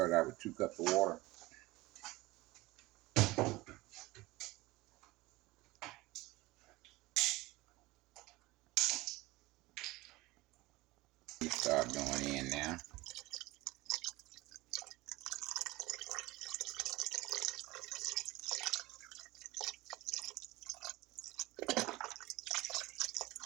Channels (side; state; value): left; quieter; 20.2 dB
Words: out with 2 cups of water. You start going in now.